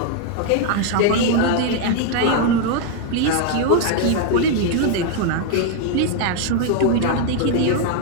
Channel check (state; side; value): different; both; correlation 0.00